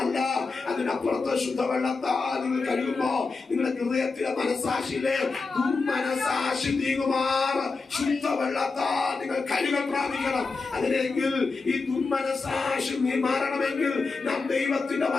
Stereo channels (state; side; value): quieter; right; 4.2 dB